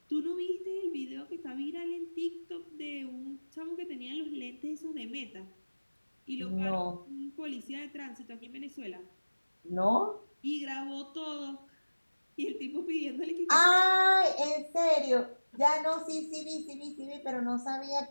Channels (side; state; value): both; inverted; correlation -1.00